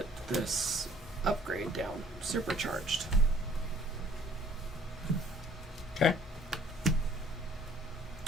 this upgrade down. Supercharged. Okay.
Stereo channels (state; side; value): normal; both; correlation 0.56